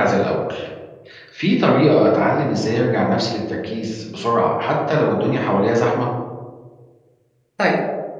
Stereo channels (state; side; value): identical; both; correlation 1.00